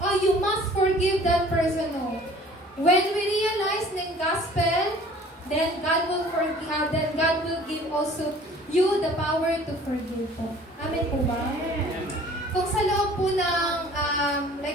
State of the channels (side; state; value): both; normal; correlation 0.50